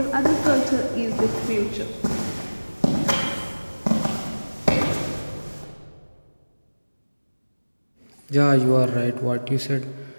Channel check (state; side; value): inverted; both; correlation -1.00